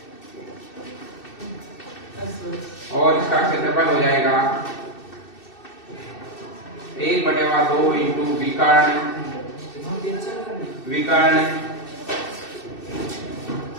और इसका क्षेत्रफल हो जाएगा 1/2 इंटू विकर्ण, विकर्ण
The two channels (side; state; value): right; late; 2.6 ms